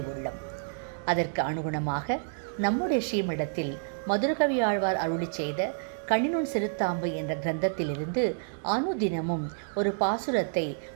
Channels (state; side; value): silent; left; digital silence